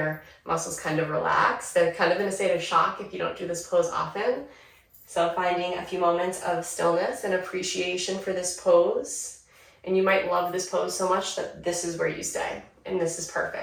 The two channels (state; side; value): identical; both; correlation 1.00